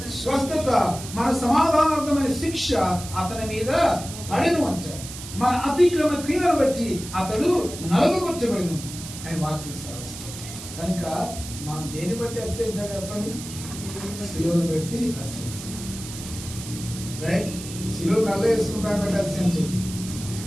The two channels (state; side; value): noise; right; hiss, 11 dB below the sound